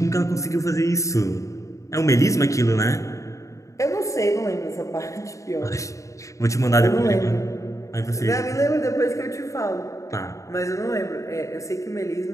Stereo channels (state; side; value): late; right; 0.15 ms